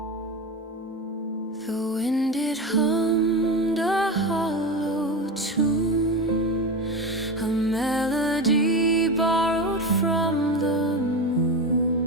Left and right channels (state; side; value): normal; both; correlation 0.22